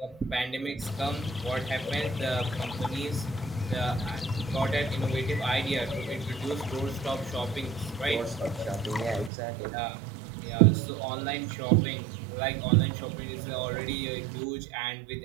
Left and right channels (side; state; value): left; drops out; at 9.3 s